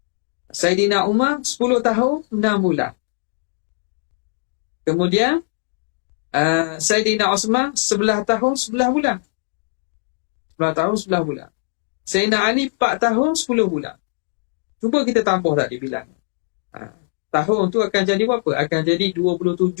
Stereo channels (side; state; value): right; silent; digital silence